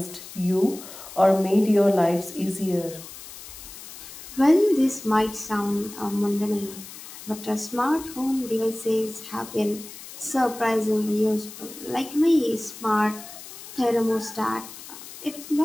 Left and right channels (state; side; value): noise; left; hiss, 15 dB below the sound